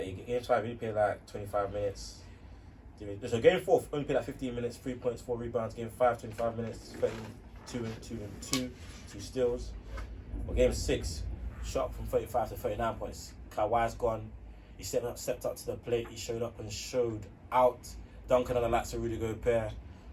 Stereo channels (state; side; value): identical; both; correlation 1.00